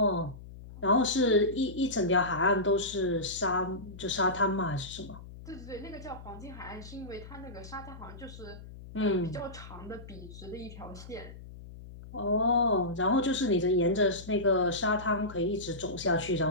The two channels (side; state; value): left; noise; hum, 15 dB below the sound